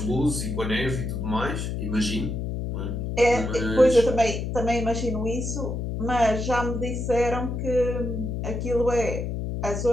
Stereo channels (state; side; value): noise; left; hum, 3 dB below the sound